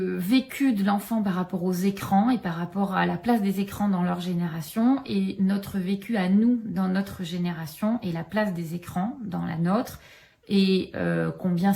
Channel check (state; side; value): identical; both; correlation 1.00